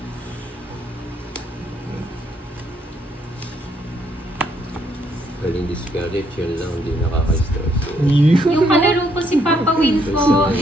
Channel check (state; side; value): normal; both; correlation 0.71